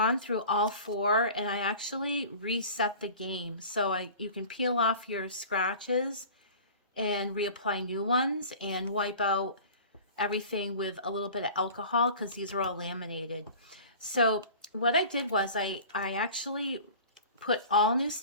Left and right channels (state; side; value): inverted; both; correlation -0.41